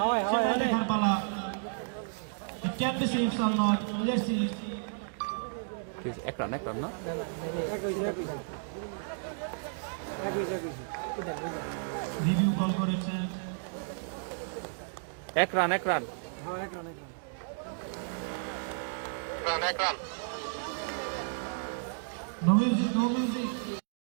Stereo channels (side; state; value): left; silent; digital silence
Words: সেটা দেখার পালা। It can be 6 or not. Let's see. এক রান না, রিভিউ কল করেছেন। এক রান। রান, এক run. No music, no music.